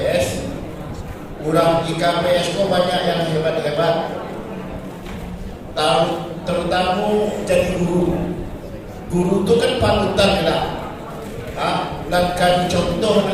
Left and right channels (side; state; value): both; identical; correlation 1.00